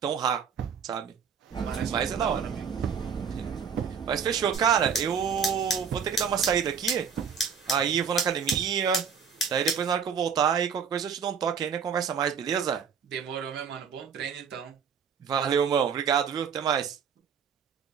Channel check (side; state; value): left; quieter; 6.7 dB